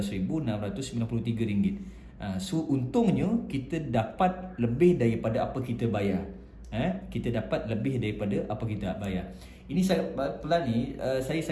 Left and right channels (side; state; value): both; identical; correlation 1.00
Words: So untungnya kita dapat lebih daripada apa kita bayar. Kita dapat lebih daripada apa kita bayar. Ini sangat pelan ni, saya